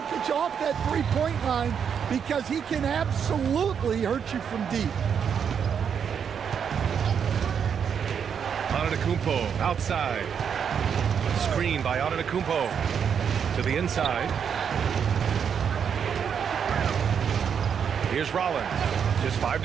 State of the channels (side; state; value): left; quieter; 7.4 dB